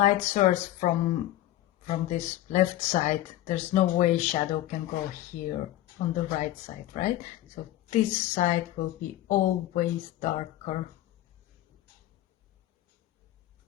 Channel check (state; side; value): quieter; right; 14.5 dB